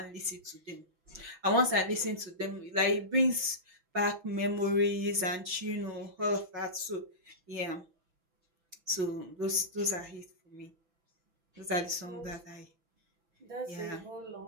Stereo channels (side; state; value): left; late; 6.0 ms